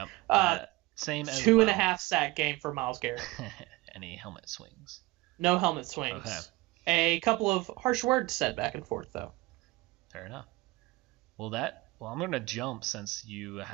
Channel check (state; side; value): quieter; left; 20.4 dB